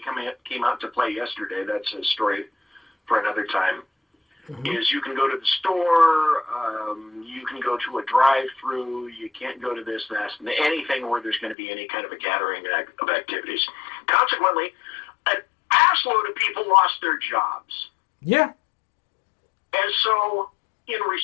came out to play yesterday. That's a story for another time. Is you can go to the store, you can go to a drive-through, you can't go to this, that, and anything where there's going to be any kind of a gathering of activities. Consequently, an assload of people lost their jobs. Yeah. And so, in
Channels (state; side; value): drops out; right; at 11.6 s